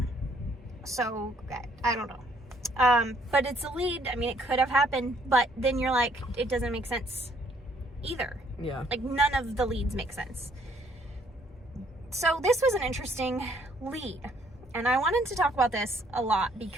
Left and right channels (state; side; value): normal; both; correlation 0.65